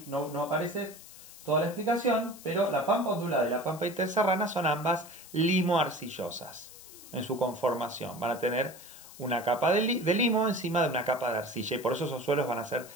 no aparece toda la explicación, pero la pampa ondulada y la pampa interserrana son ambas limo-arcillosas en su conformación. Van a tener una capa de limo encima de una capa de arcilla y por eso esos suelos van a ser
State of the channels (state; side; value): noise; left; hiss, 17 dB below the sound